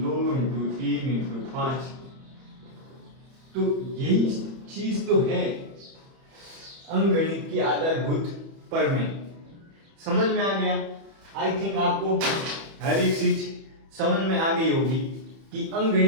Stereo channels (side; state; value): left; late; 31 ms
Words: 2 इंटू 3 इंटू 5। तो यही चीज तो है अंकगणित की आधारभूत प्रमेय। समझ में आ गया? आई थिंक आपको हर एक चीज समझ में आ गई होगी कि